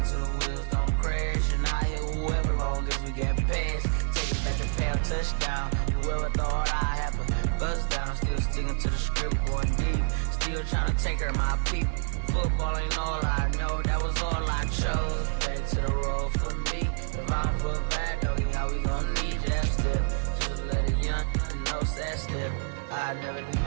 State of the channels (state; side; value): silent; left; digital silence